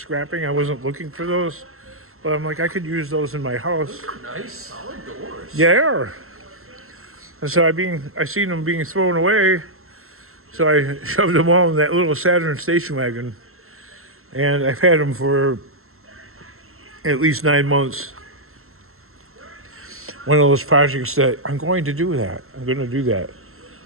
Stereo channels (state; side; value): late; left; 0.62 ms